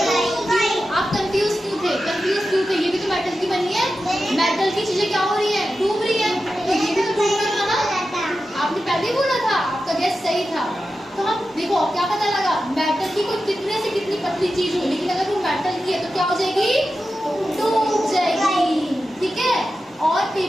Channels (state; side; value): normal; both; correlation 0.91